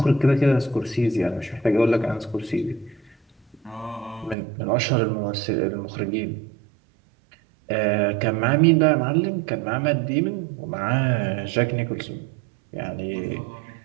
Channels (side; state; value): left; drops out; at 4.4 s